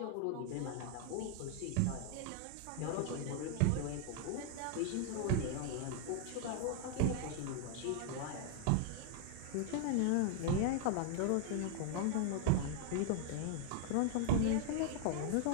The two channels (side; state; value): both; different; correlation 0.00